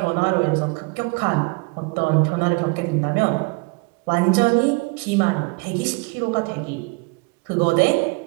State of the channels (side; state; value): left; quieter; 30.1 dB